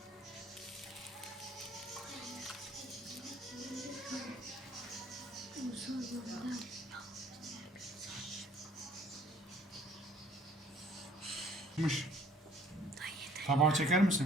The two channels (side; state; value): both; normal; correlation 0.57